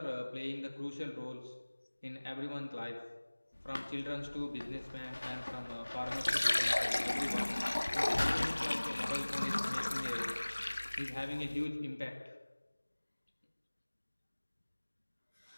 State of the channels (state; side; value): inverted; both; correlation -1.00